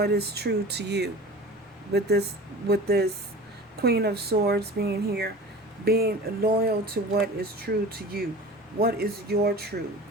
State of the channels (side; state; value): both; normal; correlation 0.37